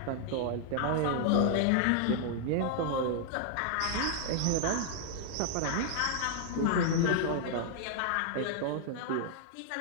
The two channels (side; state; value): both; different; correlation 0.00